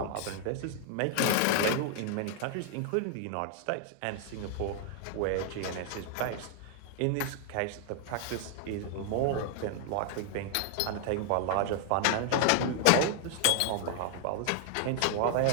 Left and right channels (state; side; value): different; both; correlation 0.00